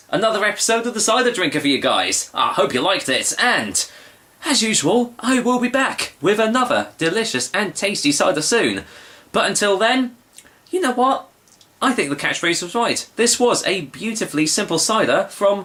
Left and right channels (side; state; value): both; identical; correlation 1.00